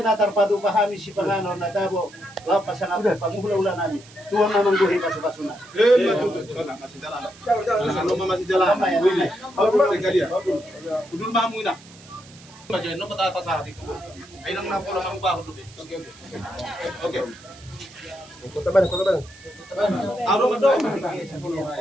pahami si panganon na tabo lapas ang apa panguhula nami tuang namang buhay pasok-pasok na masih jalan. Jangan masih jalan. Sekali ya. Kudul mamu ina. Baca no peta atas hati itu. Ainang na pola kamu baru dulu. Oke. Kota Bandung. Aro mado.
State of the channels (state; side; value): noise; right; hiss, 22 dB below the sound